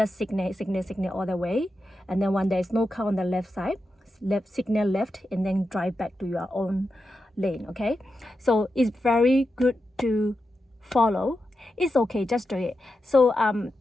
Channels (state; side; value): normal; both; correlation 0.89